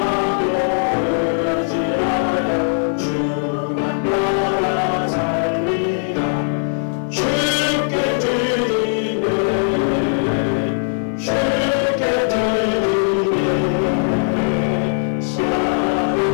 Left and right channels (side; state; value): right; silent; 57 dB below the other